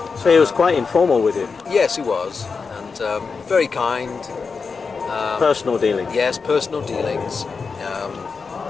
so he was quite informal with you? Yes, he was, and very kind. Personal dealings? Yes, personal dealings.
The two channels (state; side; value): quieter; right; 5.0 dB